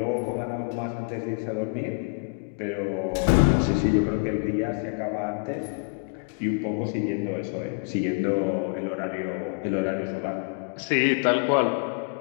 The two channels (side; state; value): right; quieter; 33.5 dB